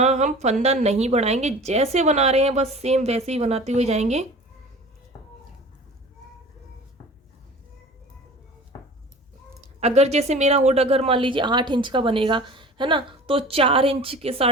हम फंदा नहीं बढ़ाएंगे, जैसे बना रहे हैं बस सेम वैसे ही बनाते हुए जाएंगे। अगर जैसे मेरा हुड अगर मान लीजिए 8 इंच का बनेगा, है ना, तो 4 इंच के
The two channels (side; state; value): both; normal; correlation 0.41